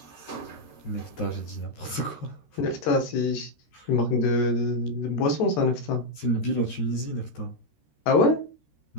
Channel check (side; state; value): right; late; 13 ms